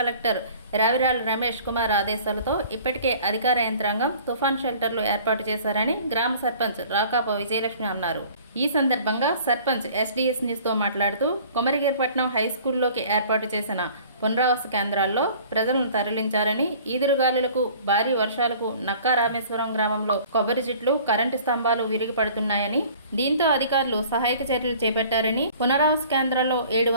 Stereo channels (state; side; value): inverted; both; correlation -0.50